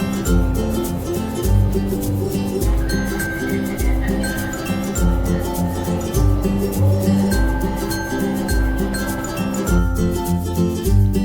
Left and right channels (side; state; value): both; identical; correlation 1.00